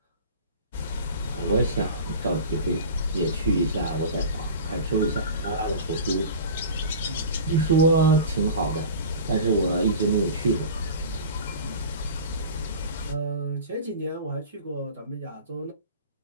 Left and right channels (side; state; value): both; inverted; correlation -0.36